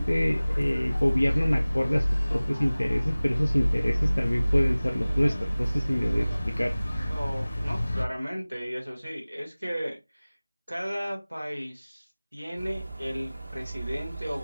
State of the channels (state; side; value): inverted; both; correlation -0.99